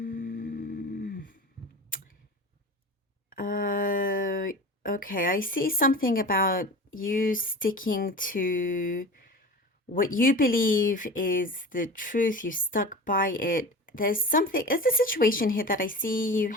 Okay, I see something about you sticking to what you believe is the truth. You stuck by it. There's a situation here that I see you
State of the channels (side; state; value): both; normal; correlation 0.34